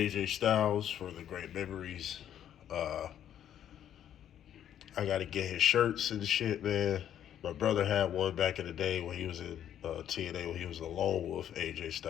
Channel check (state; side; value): quieter; right; 10.3 dB